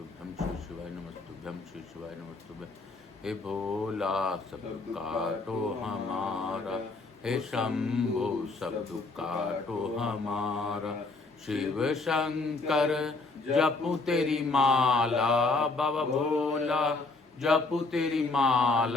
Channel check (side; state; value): right; quieter; 3.6 dB